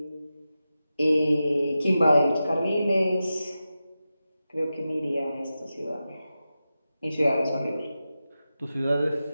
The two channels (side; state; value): both; inverted; correlation -0.92